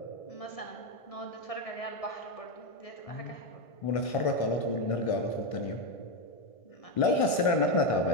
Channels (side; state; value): right; late; 1.6 ms